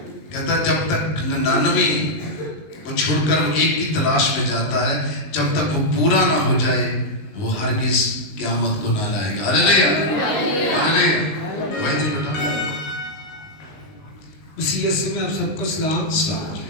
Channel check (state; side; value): late; right; 19 ms